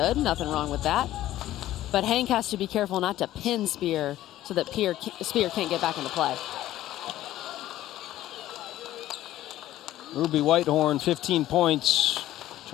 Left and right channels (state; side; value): quieter; right; 14.0 dB